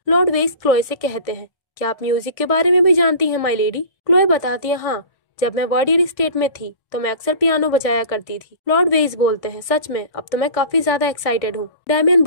लॉर्ड वेइस क्लोए से कहते हैं, क्या आप म्यूजिक के बारे में भी जानती हैं माई लेडी? क्लोए बताती है, हाँ, जब मैं वर्डियर स्टेट में थी तो मैं अक्सर पियानो बजाया करती थी। लॉर्ड वेइस बोलते हैं, सच में? अब तो मैं काफी ज्यादा एक्साइटेड हूँ। डैमियन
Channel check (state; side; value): late; right; 1.6 ms